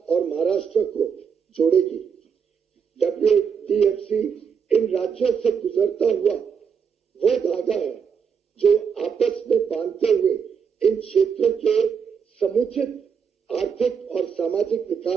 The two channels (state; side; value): quieter; left; 6.7 dB